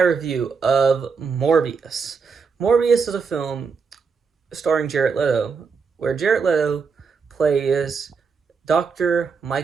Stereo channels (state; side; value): quieter; left; 5.4 dB